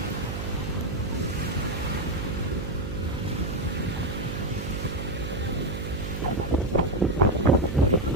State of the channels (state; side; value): noise; right; hum, 5 dB below the sound